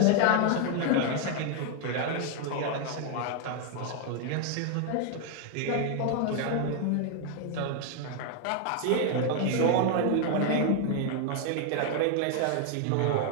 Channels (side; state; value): both; different; correlation 0.01